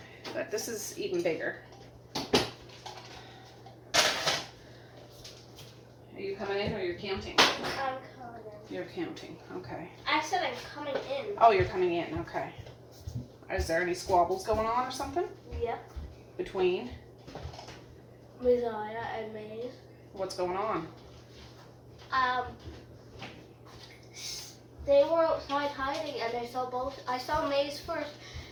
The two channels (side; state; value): both; identical; correlation 1.00